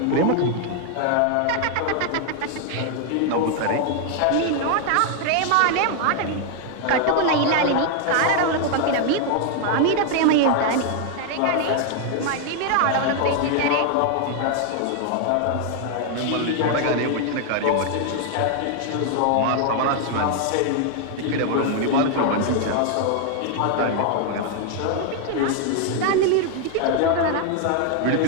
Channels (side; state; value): both; different; correlation 0.00